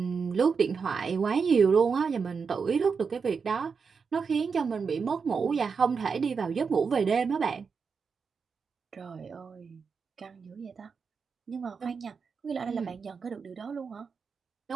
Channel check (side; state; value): left; quieter; 5.5 dB